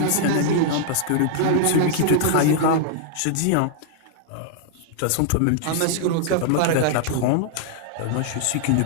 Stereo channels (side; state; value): both; different; correlation -0.01